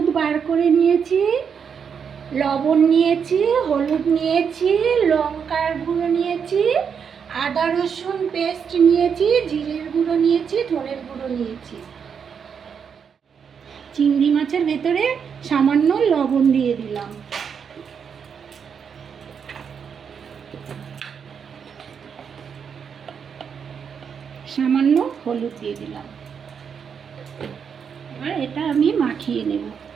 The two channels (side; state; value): left; quieter; 6.9 dB